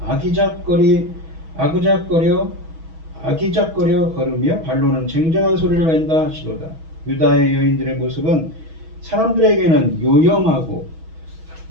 아기작거려 걸으며 발로는 쟁쟁한 소리를 낸다 하시도다. 유다의 여인들의 모습은 사람들에게는 요염하게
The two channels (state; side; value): late; left; 6.2 ms